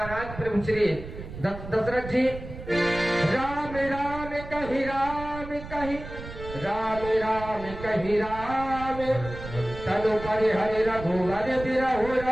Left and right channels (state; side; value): noise; right; rumble, 12 dB below the sound